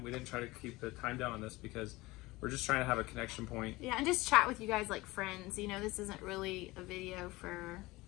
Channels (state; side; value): quieter; right; 20.7 dB